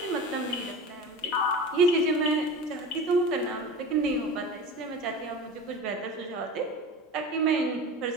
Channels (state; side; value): normal; both; correlation 0.32